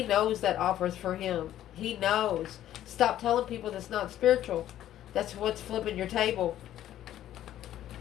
knows that offers for him. He knows. Stop telling people that's not spiritual. That's what's flipping your table.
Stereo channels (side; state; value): right; quieter; 12.3 dB